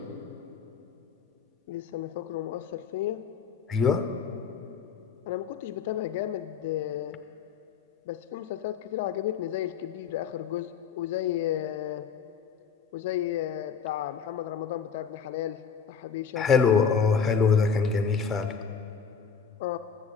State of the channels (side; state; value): right; quieter; 6.3 dB